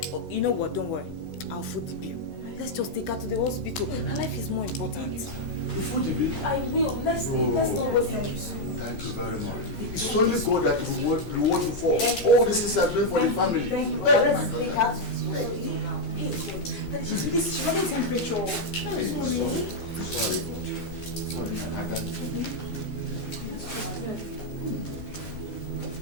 You know what? Don't worry. I'll foot the bill. Let's just take her to the hospital. Her life is more important. You foot the bill? I will. Let's not waste time. Thank you very much. It's only God that reward you for all the things you are doing for the family. Thank you. Let's take her to the hospital now. Hey, God. Daddy, she's running temperature. Hey, sorry. Sorry, Ada.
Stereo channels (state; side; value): late; right; 11 ms